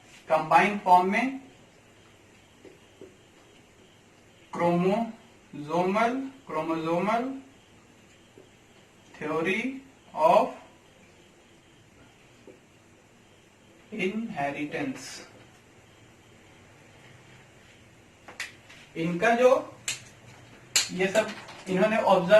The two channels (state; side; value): identical; both; correlation 1.00